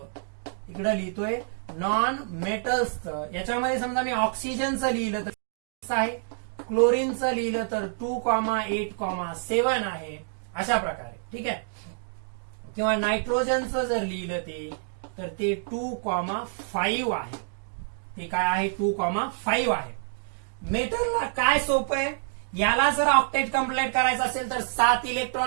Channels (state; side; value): silent; left; digital silence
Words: इकडे लिहितोय नॉन मेटल्सचं. याच्यामध्ये समजा मी ऑक्सिजनचं लिहिलं तर आहे, क्लोरीनचं लिहिलं तर 2,8,7 आहे, अशा प्रकारे. ठीक आहे. किंवा नायट्रोजनचं जर लिहिलं तर ते 2,5 आहे. ते काय आहे? 2,5 आहे. मेटलला काय सोपं आहे, याला जर ऑक्टेट कंप्लीट करायचं असेल तर 7